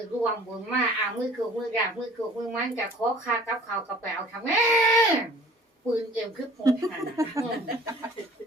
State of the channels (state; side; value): normal; both; correlation 0.49